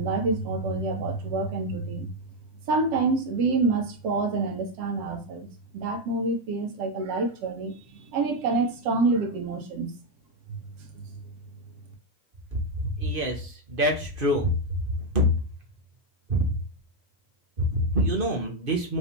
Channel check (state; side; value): late; left; 2.5 ms